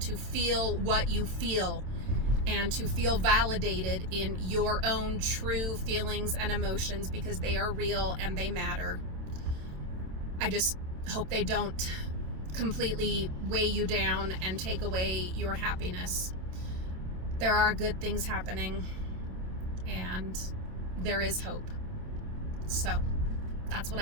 feel what you feel and to feel validated in your own true feelings and emotions, because they are real and they matter. I just hope they don't completely weigh you down and take away your happiness. There are good things happening, and there is hope. So that's what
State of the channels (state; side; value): late; left; 27 ms